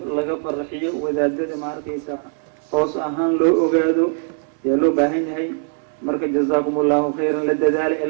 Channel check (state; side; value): silent; left; 57 dB below the other